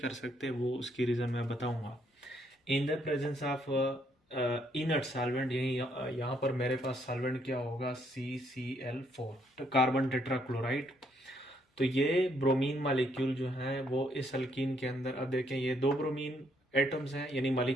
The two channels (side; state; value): both; normal; correlation 0.71